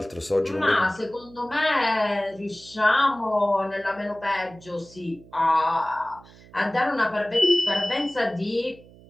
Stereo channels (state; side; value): noise; right; hum, 23 dB below the sound